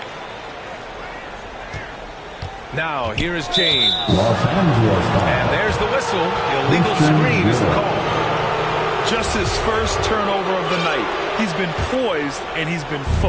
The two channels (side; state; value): both; identical; correlation 1.00